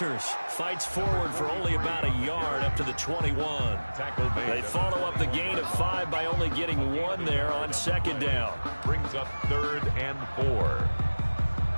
fights forward for only about a yard up to the 21. They follow up the gain of 5 by only getting 1 there on 2nd down. Brings up 3rd and 4.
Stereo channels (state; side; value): inverted; both; correlation -1.00